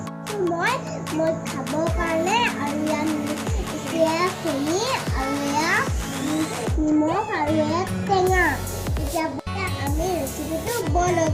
মই খাবৰ কাৰণে আৰু এয়া চেনি আৰু এয়া নিমখ আৰু এয়া টেঙা। এতিয়া আমি ৰেচিপিটো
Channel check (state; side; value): identical; both; correlation 1.00